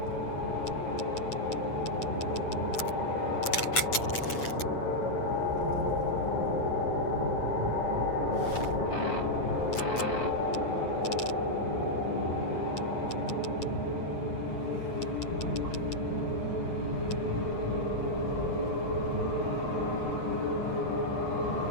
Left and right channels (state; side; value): late; right; 8.3 ms